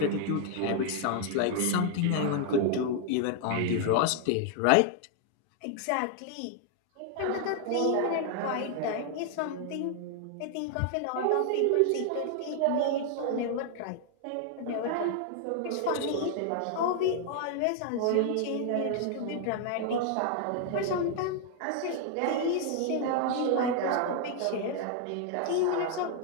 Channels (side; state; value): both; different; correlation 0.00